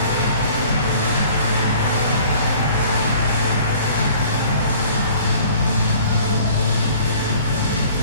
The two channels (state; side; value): inverted; both; correlation -0.51